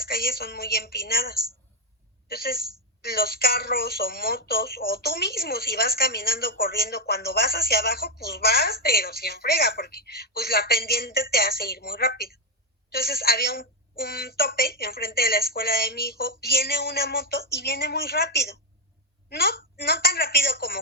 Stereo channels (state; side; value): normal; both; correlation 0.01